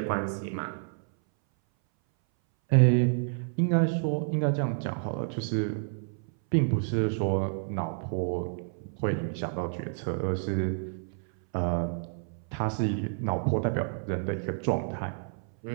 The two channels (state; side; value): silent; left; 58 dB below the other